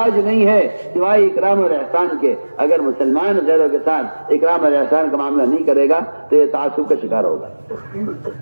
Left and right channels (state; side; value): inverted; both; correlation -1.00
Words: نہیں ہے سوائے اکرام اور احسان کے. اگر مسلمان غیروں کے ساتھ اکرام اور احسان کا معاملہ نہیں کرے گا تو یہ تعصب کا شکار ہوگا.